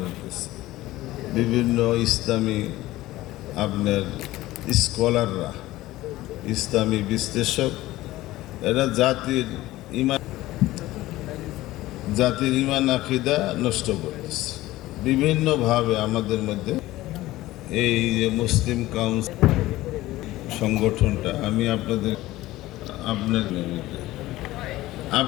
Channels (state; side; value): quieter; right; 17.0 dB